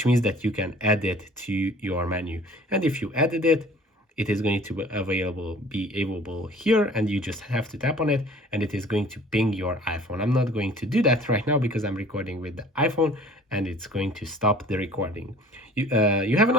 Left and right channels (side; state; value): both; normal; correlation 0.49